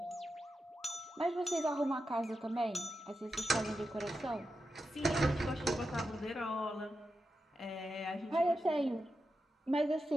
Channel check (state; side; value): normal; both; correlation 0.89